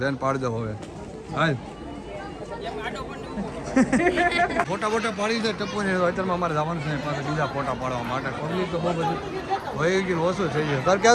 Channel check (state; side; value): identical; both; correlation 1.00